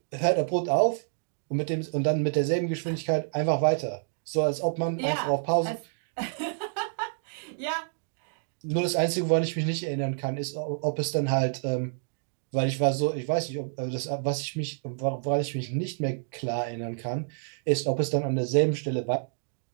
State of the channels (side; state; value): left; silent; digital silence